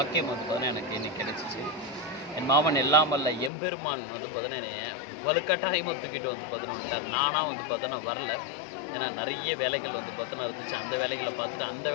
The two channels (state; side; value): drops out; right; at 3.5 s